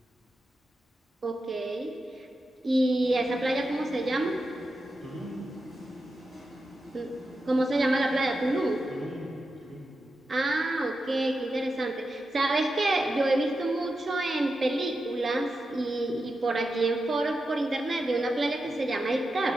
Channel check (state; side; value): normal; both; correlation 0.89